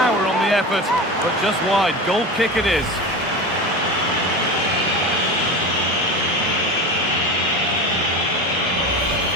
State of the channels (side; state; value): both; normal; correlation 0.27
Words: on the effort, but just wide. Goal kick it is.